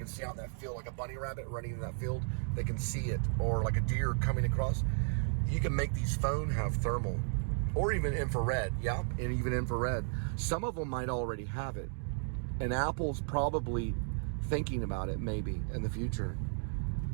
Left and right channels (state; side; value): silent; left; 55 dB below the other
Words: see out in that field, like a bunny rabbit running in that field. They can see it, or like a deer coming across. You can make these phones have thermal, or even infrared. Yeah, and even infrared. Some of them might already have it, and Apple's probably thinking about it maybe in the future.